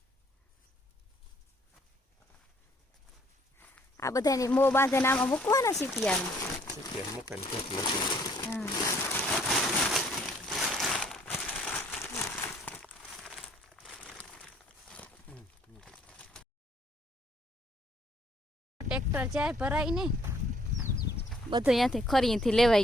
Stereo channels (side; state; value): both; normal; correlation 0.62